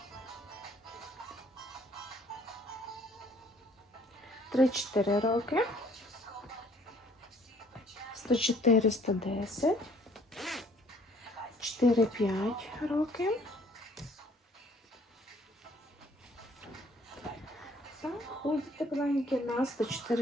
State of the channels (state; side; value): normal; both; correlation 0.60